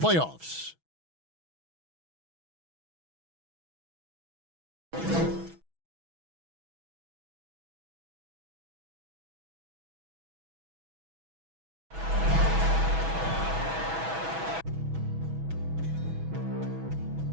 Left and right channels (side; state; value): left; late; 6.1 ms